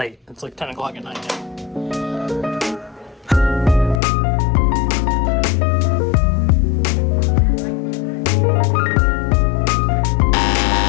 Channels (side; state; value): right; drops out; at 4.0 s